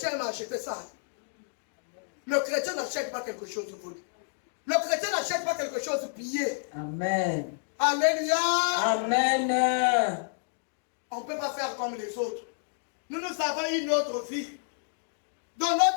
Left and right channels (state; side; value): silent; right; digital silence